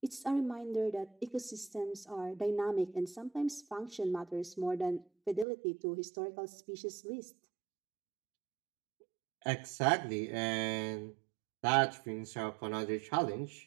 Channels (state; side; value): drops out; left; at 5.5 s